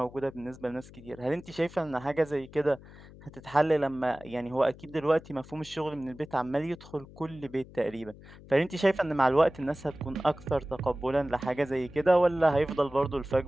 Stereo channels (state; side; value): noise; left; hum, 19 dB below the sound